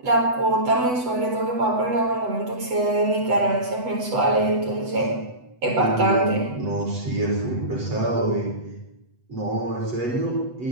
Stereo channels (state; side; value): late; left; 8.0 ms